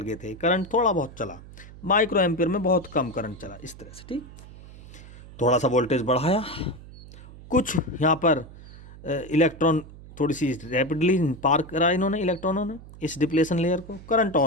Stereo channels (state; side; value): noise; right; hum, 17 dB below the sound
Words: गए थे। करंट थोड़ा बहुत चला, माइक्रो एम्पियर में बहुत कम करंट चला, इस तरह से। ठीक, थोड़ा सा वोल्टेज बढ़ाया, कुछ यहाँ पर इलेक्ट्रॉन थोड़ी सी रैपिडली पार करा इन्होंने, इलेक्ट्रॉनों ने इस डिप्लेशन लेयर को, करंट